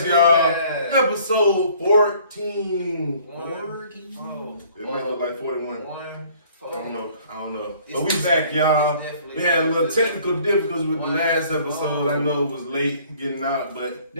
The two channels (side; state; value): both; inverted; correlation -0.56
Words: y'all. Episode 14. 14. It might look like 41. I don't know. But we back, y'all. We had a little technical difficulties with the last episode. I know it was late getting out, but